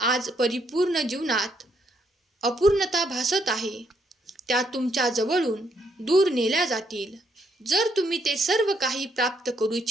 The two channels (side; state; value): both; normal; correlation 0.73